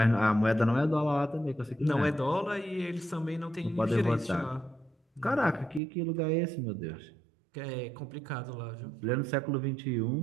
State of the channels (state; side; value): drops out; left; at 5.8 s